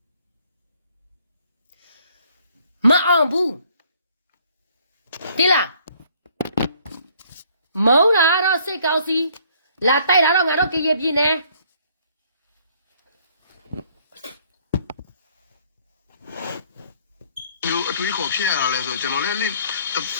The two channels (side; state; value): both; inverted; correlation -0.62